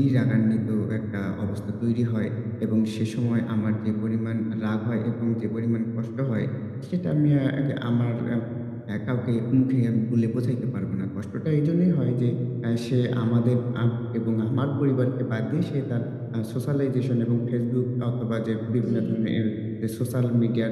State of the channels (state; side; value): identical; both; correlation 1.00